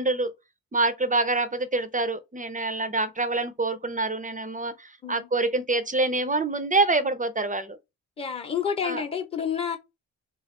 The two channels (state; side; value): normal; both; correlation 0.02